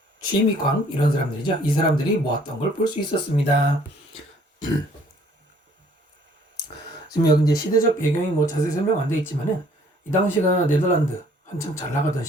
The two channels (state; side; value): normal; both; correlation 0.59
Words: 취미광 이런 사람들이죠. 이 사람들이 모았던 걸 볼 수 있었습니다. 지금 여기 이제 시대적 배경이 뭐 자세히 설명 안 돼 있지만은 이 당시가 네덜란드 한참 잘 나가던